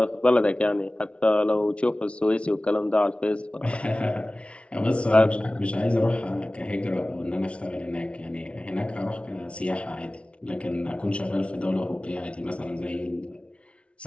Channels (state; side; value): late; right; 0.060 ms